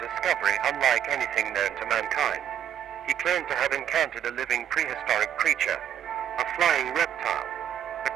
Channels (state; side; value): quieter; left; 9.8 dB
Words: unlike anything known to mankind. He claimed to have encountered a living prehistoric creature, a flying reptile, a